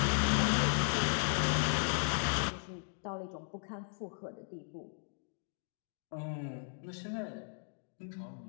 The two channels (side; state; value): right; silent; digital silence